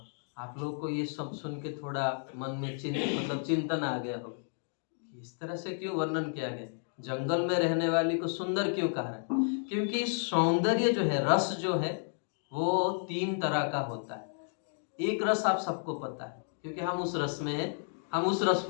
आप लोग को ये सब सुन के थोड़ा मन में चिंतन आ गया हो। इस तरह से क्यों वर्णन किया गया? जंगल में रहने वाली को सुंदर क्यों कहा है? क्योंकि सौंदर्य जो है, रस जो है, वो 3 तरह का होता है। एक रस आप सबको पता है, क्योंकि हम उस रस में हैं, हम उस रस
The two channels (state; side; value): silent; right; 56 dB below the other